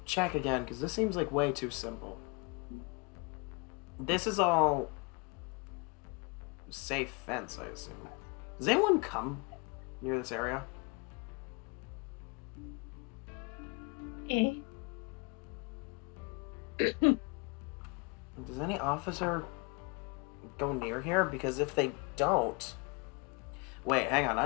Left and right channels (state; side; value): quieter; right; 31.1 dB